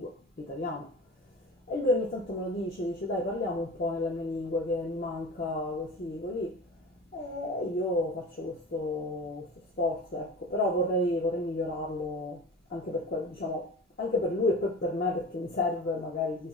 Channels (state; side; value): normal; both; correlation 0.35